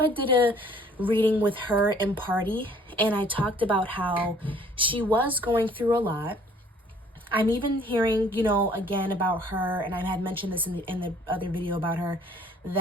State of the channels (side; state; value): both; normal; correlation 0.56